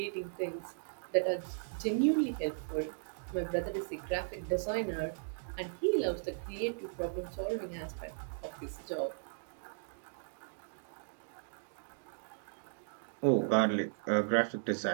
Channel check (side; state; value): left; silent; digital silence